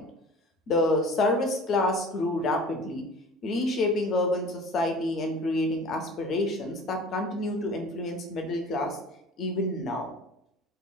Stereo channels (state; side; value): normal; both; correlation 0.42